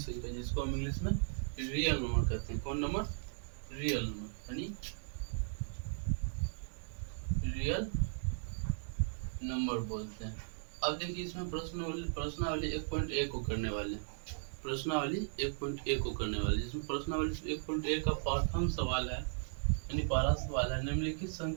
जिसको हम इंग्लिश में रियल नंबर कहते हैं। कौन नंबर? रियल नंबर यानी रियल नंबर बोलते हैं। अब देखिए, इसमें प्रश्नावली 1.1 को करने वाले हैं। प्रश्नावली 1.1 को करने वाले, जिसमें प्रश्नावली 1.1 का प्रथम सवाल है यानी पहला सवाल है, निम्नलिखित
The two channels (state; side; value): silent; left; digital silence